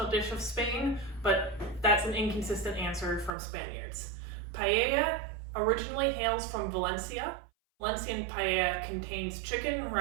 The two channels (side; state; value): left; drops out; at 3.3 s